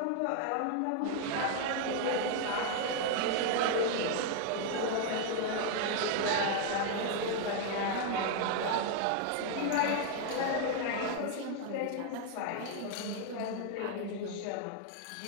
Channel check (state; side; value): different; both; correlation 0.00